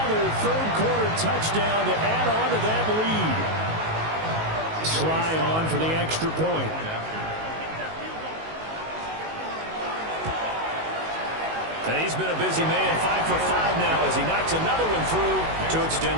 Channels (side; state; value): left; late; 19 ms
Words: third quarter touchdown to add on to that lead. Sly on for the extra point. And he's been a busy man, 5 for 5 now as he knocks another one through to